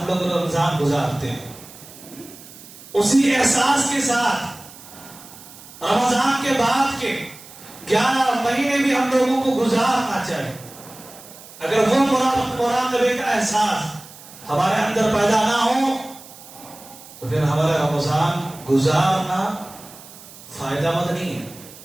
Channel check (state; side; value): noise; right; hiss, 19 dB below the sound